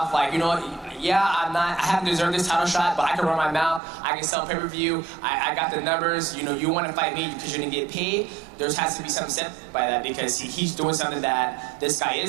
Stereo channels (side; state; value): left; drops out; at 3.8 s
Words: Like, you know, yeah, I haven't deserved this title shot, but I can run my mouth, I can sell pay-per-view, I got the numbers, you know, you want to fight me because you're going to get paid. There has to be something said by that because he's doing something that this guy